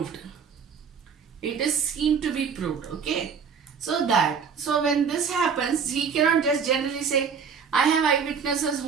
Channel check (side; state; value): left; quieter; 6.3 dB